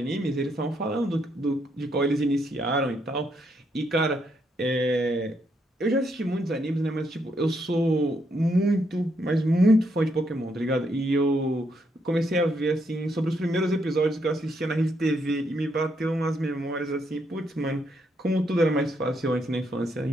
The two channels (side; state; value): both; normal; correlation 0.76